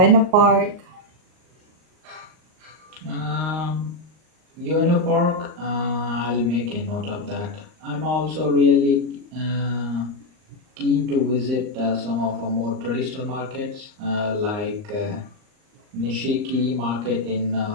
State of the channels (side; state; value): left; late; 39 ms